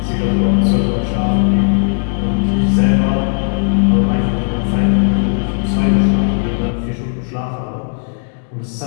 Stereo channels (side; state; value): right; silent; digital silence